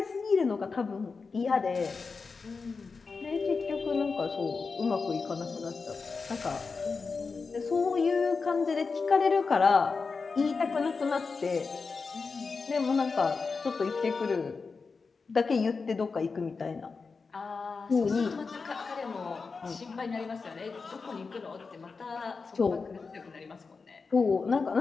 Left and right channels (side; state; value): right; quieter; 4.6 dB